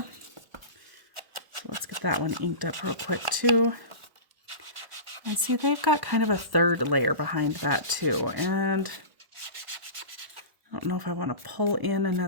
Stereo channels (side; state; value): left; late; 1.0 ms